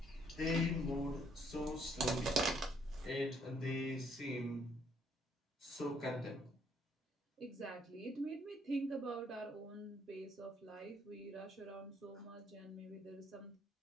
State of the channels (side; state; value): both; normal; correlation 0.68